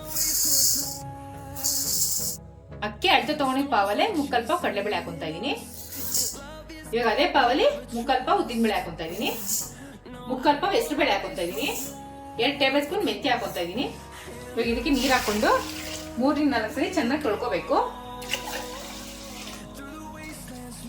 ಅಕ್ಕಿ ಅಳತೆ ತಗೊಂಡಿದ್ ಪಾವಲ್ಲೇ 3/4 ಪಾವ್ ಕಡಲೆಬೇಳೆ ಹಾಕೊಂತಾ ಇದೀನಿ. ಇವಾಗ ಅದೇ ಪಾವಲ್ಲಿ 3/4 ಪಾವ್ ಉದ್ದಿನಬೇಳೆ ಹಾಕೊಂತಾ ಇದೀನಿ. 3/4 ಪಾವ್ ಹೆಸರುಬೇಳೆ ಹಾಕೊಂತಾ ಇದೀನಿ. 2 ಟೇಬಲ್ ಸ್ಪೂನ್ ಮೆಂತ್ಯ ಹಾಕೊಂತಾ ಇದೀನಿ. ಇವಾಗ ಇದಕ್ಕೆ ನೀರ್ ಹಾಕೊಂಡು 3-4 ಸರಿ ಚೆನ್ನಾಗಿ ತೊಳ್ಕೋಬೇಕು.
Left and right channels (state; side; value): identical; both; correlation 1.00